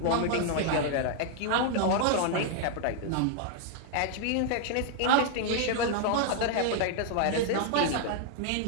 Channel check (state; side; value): different; both; correlation 0.00